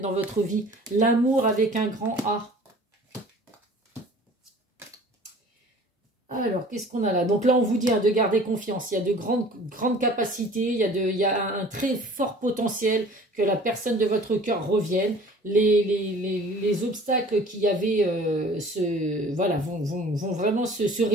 votre vie. L'amour avec un grand A. Alors, qu'est-ce qu'on a là? Donc là, on vous dit de garder confiance. Il y a de grandes capacités. Il y a un très fort potentiel que la personne de votre cœur revienne. Les obstacles qu'il y avait vont vraiment se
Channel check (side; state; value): both; normal; correlation 0.47